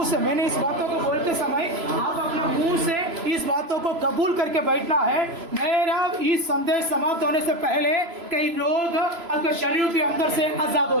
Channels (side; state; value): left; late; 3.0 ms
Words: मैंने इस बातों को बोलते समय आप अपने मुंह से इस बातों को कबूल करके बैठना है। मेरा इस संदेश समाप्त होने से पहले कई रोग आपके शरीर के अंदर से आजाद